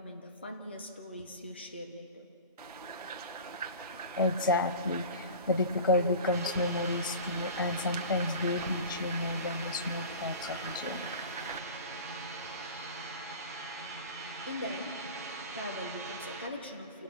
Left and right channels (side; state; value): both; inverted; correlation -0.34